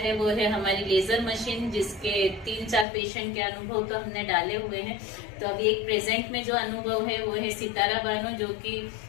वो है हमारी लेजर मशीन, जिसके 3-4 पेशेंट के अनुभव तो हमने डाले हुए हैं। तो अभी एक प्रेजेंट में जो अनुभव है वो है सितारा बानो, जो कि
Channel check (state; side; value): drops out; right; at 2.9 s